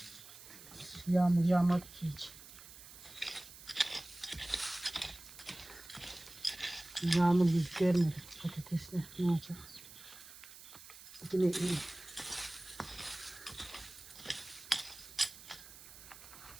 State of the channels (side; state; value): right; noise; hiss, 17 dB below the sound